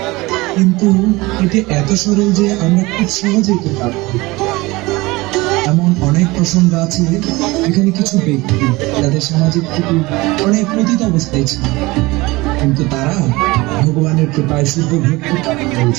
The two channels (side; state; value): left; quieter; 21.8 dB